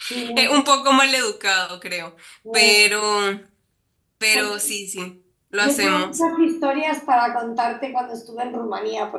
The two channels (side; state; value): both; identical; correlation 1.00